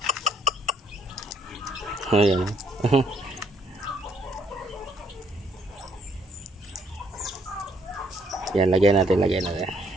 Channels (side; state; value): both; normal; correlation 0.68